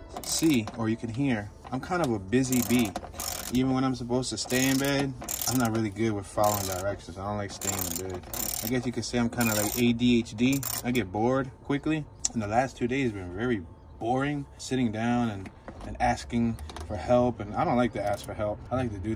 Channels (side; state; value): both; identical; correlation 1.00